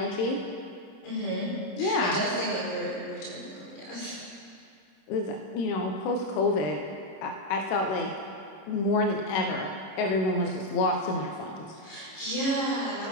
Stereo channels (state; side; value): late; right; 26 ms